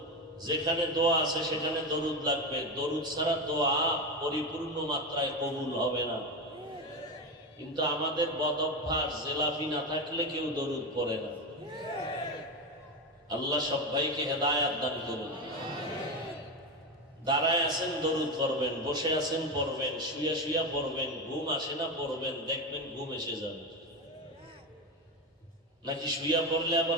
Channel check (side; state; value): both; normal; correlation 0.17